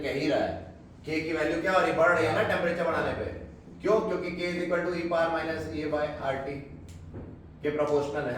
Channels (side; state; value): both; identical; correlation 1.00